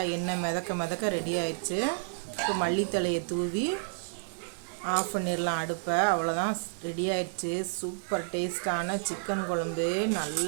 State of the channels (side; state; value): left; silent; 58 dB below the other